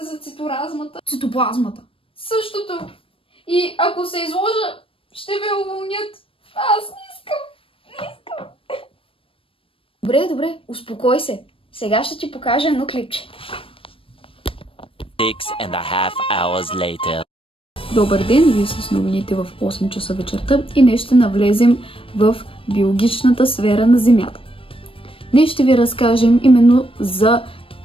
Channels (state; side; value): late; right; 0.26 ms